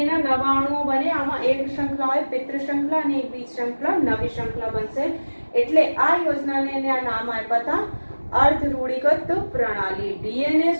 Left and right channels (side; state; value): both; inverted; correlation -1.00